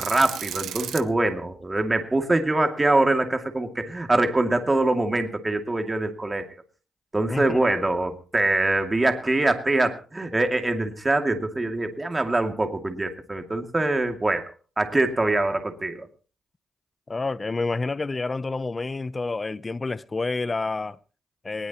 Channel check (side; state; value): both; normal; correlation 0.94